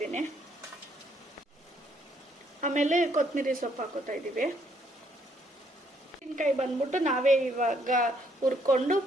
ಆಮೇಲೆ ಕೊತ್ತಂಬರಿ ಸೊಪ್ಪು ಹಾಕೋತಾ ಇದ್ದೀವಿ. ಮೆಣಸಿನ್ಕಾಯಿ ಬಂದ್ಬಿಟ್ಟು ನಾವೇ ಇವಾಗ ಹುರ್ಕೊಂಡು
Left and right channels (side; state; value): both; normal; correlation 0.69